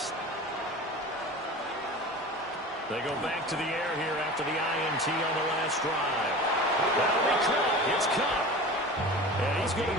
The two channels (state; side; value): normal; both; correlation 0.35